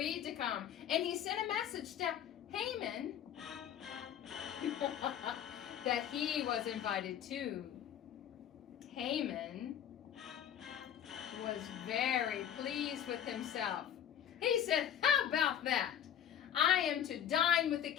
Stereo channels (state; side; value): quieter; right; 9.8 dB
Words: to come, and he sent a message to Haman that he was invited too. Haman was very pleased with himself. He said, How about that? I am to dine with the